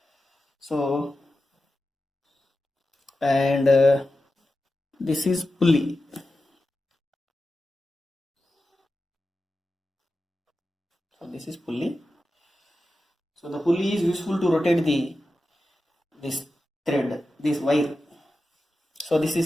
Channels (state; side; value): normal; both; correlation 0.92